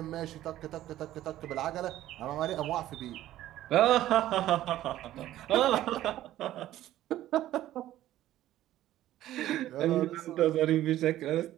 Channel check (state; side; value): quieter; left; 13.8 dB